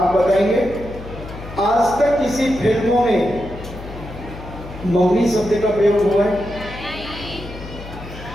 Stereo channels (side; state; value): left; noise; hum, 13 dB below the sound